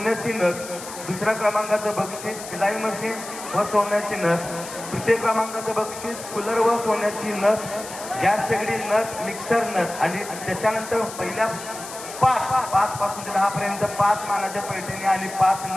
नथ. दुसऱ्या क्रमांकाचं बक्षीस सिलाई मशीन व सोन्याची नथ. तृतीय क्रमांकाचं बक्षीस कूलर व सोन्याची नथ, गॅस शेगडी नथ, मिक्सर नथ. आणि त्याच्यानंतर पहिल्या 5 पासून ते 10 पर्यंत 5 मानाच्या पैठणी आणि 5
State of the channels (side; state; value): left; noise; hiss, 12 dB below the sound